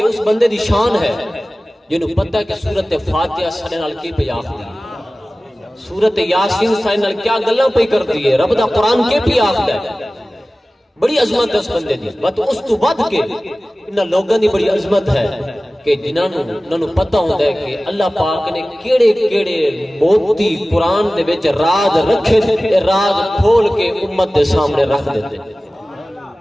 اس بندے دی شان ہے جنہوں پتہ ہے کہ سورت فاتحہ سنے نال کی پہ آخری، سورت یاسین سنے نال کیا گلہ پہ کر دیئے، رب دا قرآن کے پہ آخر ہے، بڑی عظمت ہے اس بندے دی۔ اس تو ود کے انہاں لوگاں دی بڑی عظمت ہے کہ جنہوں پتہ ہوتا ہے کہ اللہ پاک نے کیڑے کیڑے موتی قرآن دے وچ راز رکھے تھے، راز کھول کے امت دے سامنے رکھ دیتے۔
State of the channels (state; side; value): normal; both; correlation 0.97